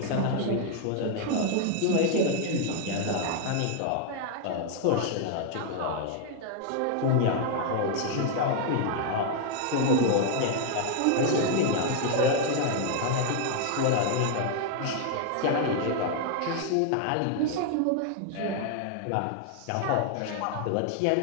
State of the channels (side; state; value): both; different; correlation 0.00